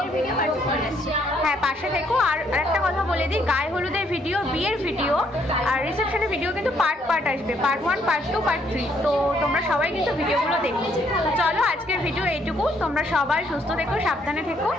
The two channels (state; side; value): normal; both; correlation 0.69